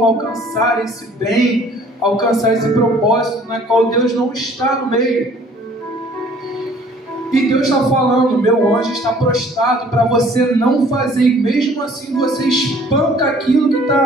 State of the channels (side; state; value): both; normal; correlation 0.55